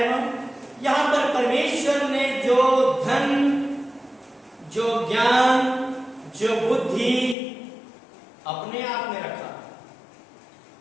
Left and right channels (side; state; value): right; drops out; at 7.4 s